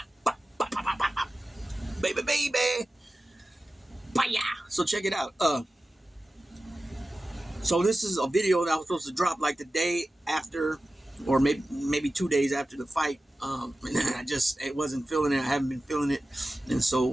bop, bop, bop, bop, bop. Baby, baby. Baya. So check it out. So this is a video that I was supposed to drop like the day after, or maybe 2 days after the fight. And I wasn't feeling it. I haven't been feeling it, and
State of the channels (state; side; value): normal; both; correlation 0.95